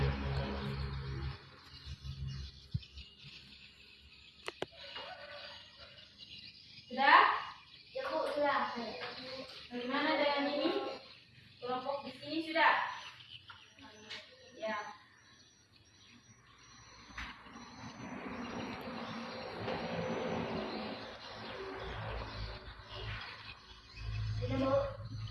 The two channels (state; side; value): identical; both; correlation 1.00